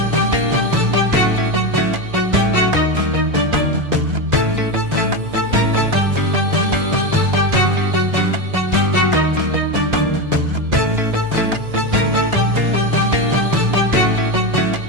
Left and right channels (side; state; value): left; late; 1.6 ms